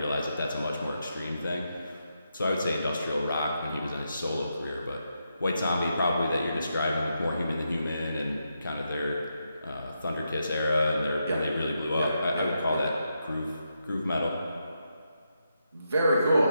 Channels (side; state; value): both; inverted; correlation -0.83